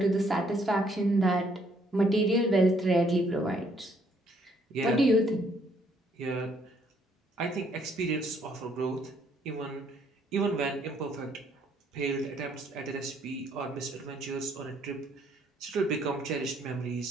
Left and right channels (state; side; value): normal; both; correlation 0.67